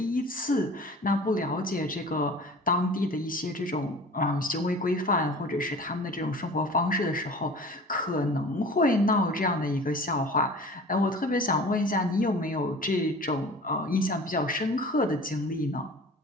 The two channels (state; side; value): normal; both; correlation 0.41